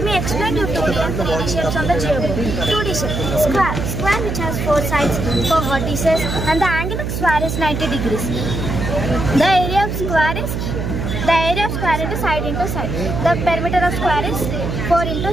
me explain you 2D and 3D shapes on the geoboard. 2D shape, square which has 4 sides, 4 vertices, and the angle of square is 90 degrees. The area of square is into side into side. The perimeter of square is 4 into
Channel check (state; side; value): noise; right; hum, 3 dB below the sound